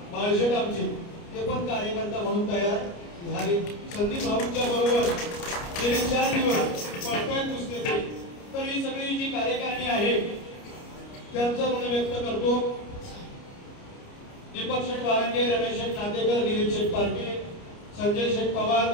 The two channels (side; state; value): right; late; 29 ms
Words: बाळशेट आमचे ते पण कार्यकर्ता म्हणून तयार झाले. संदीप भाऊंच्या बरोबर गेले 4 दिवस पळताय पुस्तके. तर ही सगळी जी कार्यकारिणी आहे त्यांचं ऋण व्यक्त करतो. दीपक शेठ वारंगे, रमेश शेठ नातेकर, दिलीप शेठ पार्टे, संजय शेठ पवार,